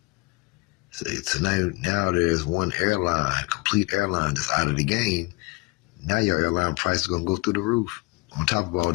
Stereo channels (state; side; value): quieter; right; 25.3 dB